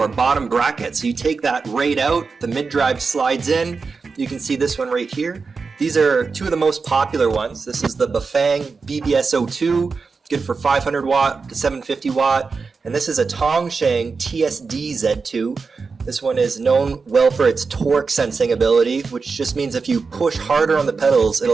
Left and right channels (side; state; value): left; quieter; 4.7 dB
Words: bottom bracket. So you take that right out, the mid-drive slides in. You can see this one right here. These are two of the most popular ones. This is the Bafang ebike02, good for 500 watt to 750 watt. And this is a Tongsheng TSD Z2. This one is known well for its torque sensing ability, which just means if you push harder on the pedals,